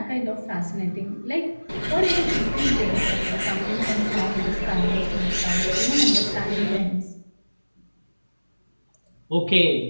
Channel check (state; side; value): inverted; both; correlation -1.00